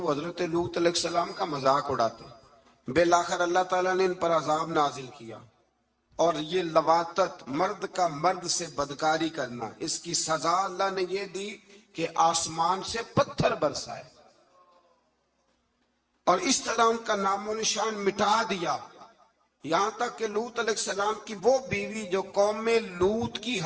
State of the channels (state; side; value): identical; both; correlation 1.00